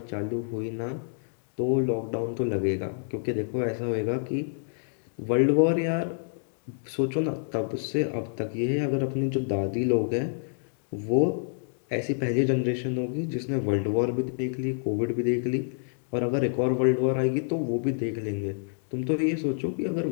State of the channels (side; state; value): right; silent; digital silence